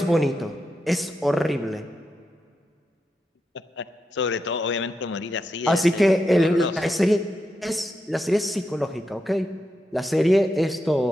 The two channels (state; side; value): normal; both; correlation 0.86